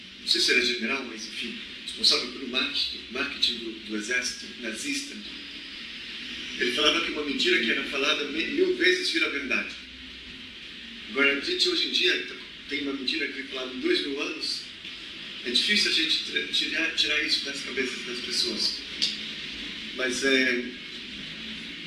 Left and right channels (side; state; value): both; identical; correlation 1.00